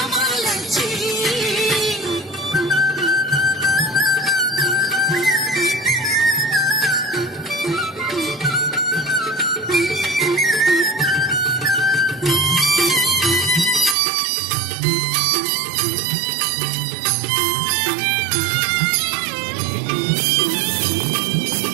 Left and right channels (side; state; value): left; drops out; at 14.0 s